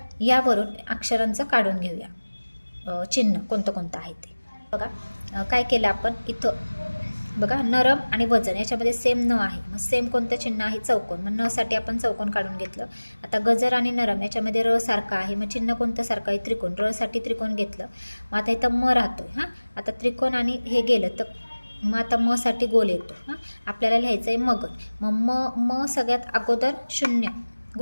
यावरून अक्षरांचं काढून घेऊया चिन्ह कोणतं आहे ते. बघा काय केलं आपण इथं बघा, नरम आणि वजन याच्यामध्ये सेम न आहे, मग सेम कोणतं चिन्ह आहे चौकोन, मग न साठी आपण चौकोन काढून घेतलं. आता गजर आणि नरम याच्यामध्ये र सारखं आहे, मग चिन्ह कोणतं सारखं आहे त्रिकोण, र साठी त्रिकोण घेतलं. मग आता इथं म राहतोय. हां, आता त्रिकोण आणि हे गेलं तर मग आता म साठी गोल येतो. हां, आपल्याला लिहायचं आहे मगन. मग म सगळ्यात अगोदर 0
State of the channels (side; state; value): both; inverted; correlation -1.00